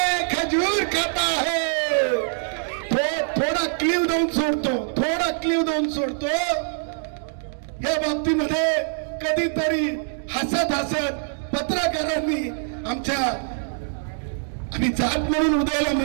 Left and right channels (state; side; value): silent; left; digital silence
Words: खजूर खाता है. थोडा क्लिव देऊन सोडतो. या बाबतीमध्ये कधीतरी हसत पत्रकारांनी आमच्या, आणि जात म्हणून उदयला